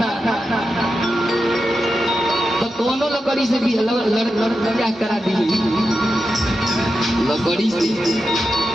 तो दोनों लकड़ी से भी लड़का करा दी, लकड़ी से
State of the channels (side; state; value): both; normal; correlation 0.89